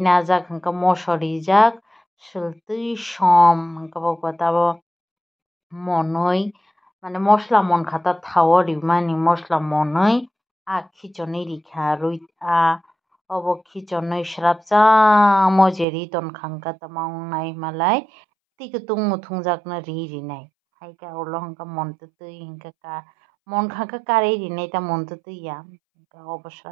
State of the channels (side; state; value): left; drops out; at 15.9 s